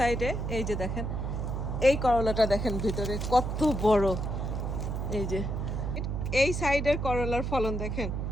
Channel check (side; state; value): right; noise; hum, 2 dB below the sound